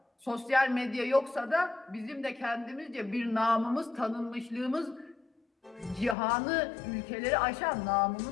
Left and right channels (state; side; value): drops out; right; at 6.2 s